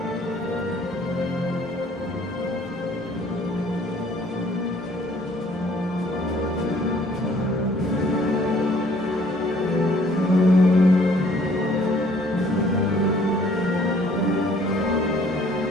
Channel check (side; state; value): both; normal; correlation 0.59